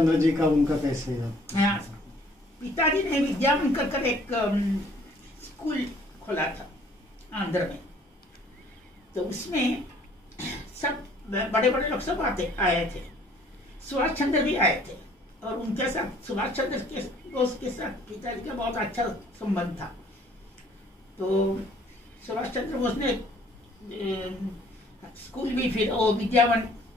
जी का उनका कैसे है? हाँ, पिताजी ने विद्यावन कर एक स्कूल खोला था आंध्र में। तो उसमें सब बड़े बड़े लोग सब आए थे। सुभाष चंद्र भी आए थे, और उनके साथ सुभाष चंद्र के दोस्त के साथ पिताजी का बहुत अच्छा संबंध था। तो सुभाष चंद्र बोस ने स्कूल भी, फिर वो विद्यावन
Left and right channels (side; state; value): both; normal; correlation 0.58